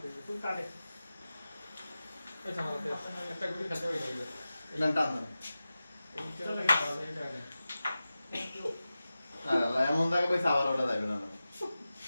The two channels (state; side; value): inverted; both; correlation -0.94